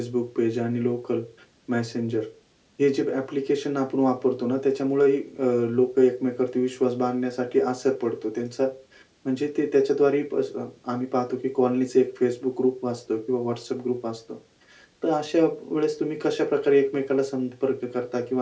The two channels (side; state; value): both; identical; correlation 1.00